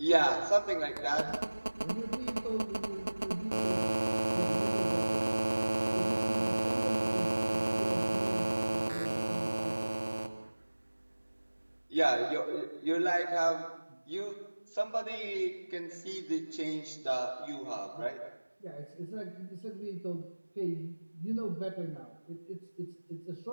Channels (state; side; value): inverted; both; correlation -1.00